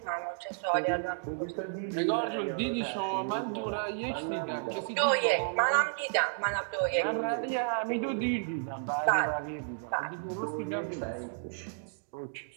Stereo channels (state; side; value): silent; left; digital silence